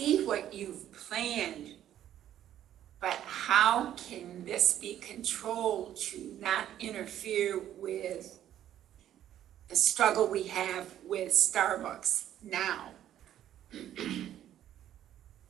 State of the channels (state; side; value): quieter; left; 11.4 dB